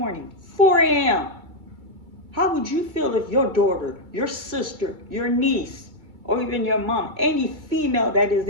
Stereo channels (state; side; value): late; left; 2.3 ms